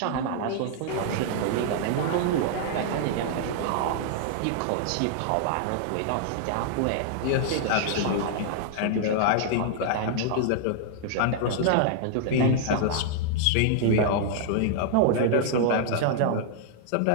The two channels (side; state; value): both; different; correlation -0.01